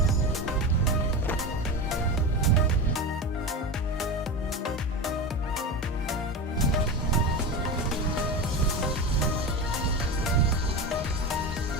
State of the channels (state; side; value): normal; both; correlation 0.23